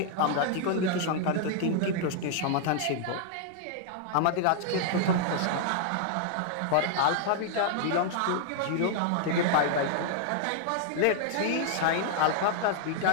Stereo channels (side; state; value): both; different; correlation -0.01